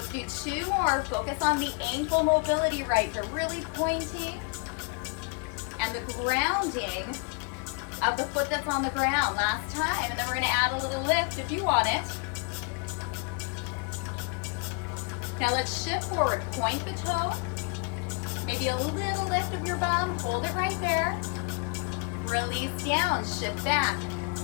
do 2 more. Focus on the ankle mobility right here, really pointing. And the grounding of the foot that's on the ground last time. And then we're gonna add a little lift if you want it. Now let's shift forward. Point the toe. Maybe a little lift of your bum. Hold it right there. Release down, shift back.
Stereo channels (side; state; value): right; quieter; 34.5 dB